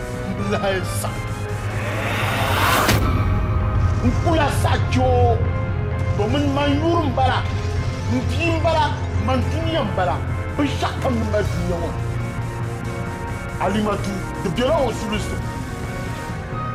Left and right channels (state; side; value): identical; both; correlation 1.00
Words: Blaisa Nkula sacho Domin mayurum bala Ntim bala Mantiniam bala Bishakam Madinawa Alimatu The Bureau of Sulusu